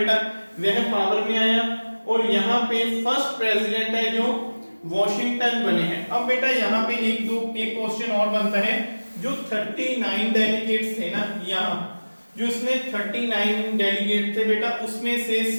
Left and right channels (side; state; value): both; inverted; correlation -1.00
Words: वह पावर में आया और यहाँ पे फर्स्ट प्रेसिडेंट है जो वॉशिंगटन बने हैं। अब बेटा यहाँ पे एक क्वेश्चन और बनता है, जो 39 डेलीगेट्स थे ना, यहाँ जो इसमें 39 डेलीगेट थे बेटा, उसमें से